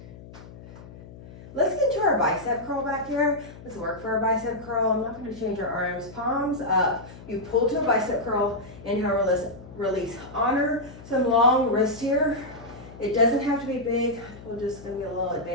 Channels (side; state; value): left; noise; hum, 17 dB below the sound